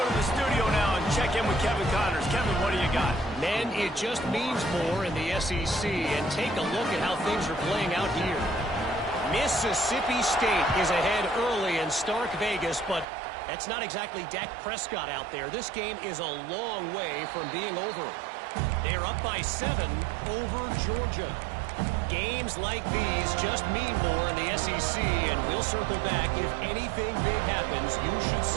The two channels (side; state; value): left; drops out; at 13.1 s